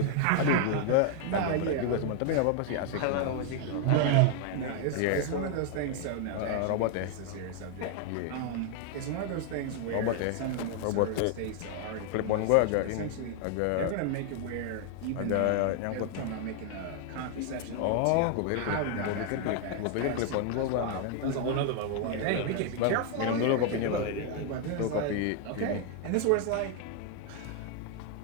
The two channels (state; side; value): different; both; correlation 0.00